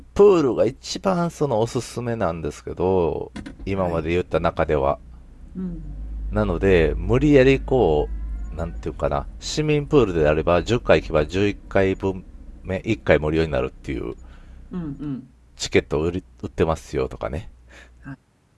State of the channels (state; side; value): identical; both; correlation 1.00